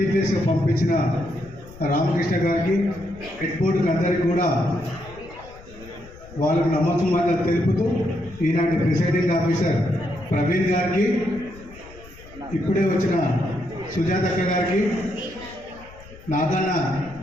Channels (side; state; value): left; noise; rumble, 20 dB below the sound